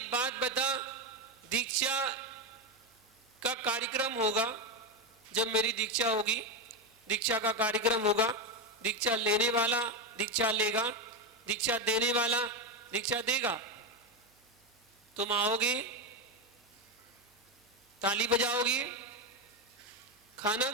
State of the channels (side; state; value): both; normal; correlation 0.09